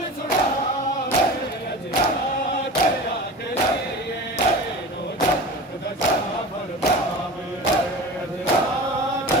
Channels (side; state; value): both; normal; correlation 0.33